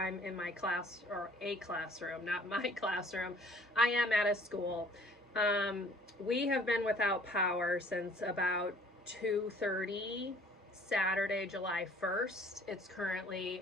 in my class, or a classroom, not my classroom. I am at a school. We have been without power since about 2:30 Saturday, July 1st. It's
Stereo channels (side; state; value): both; normal; correlation 0.55